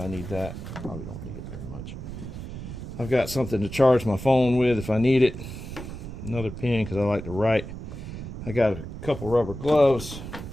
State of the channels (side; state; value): right; noise; rumble, 9 dB below the sound